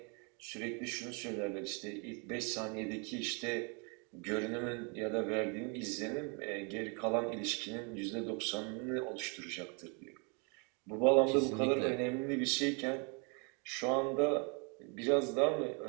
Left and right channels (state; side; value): quieter; left; 34.6 dB